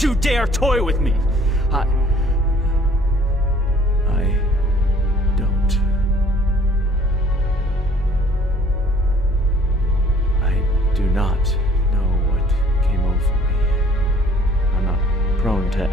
you dare toy with me! I don't. I do not know what came over me. I'm not prone to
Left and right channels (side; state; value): both; normal; correlation 0.56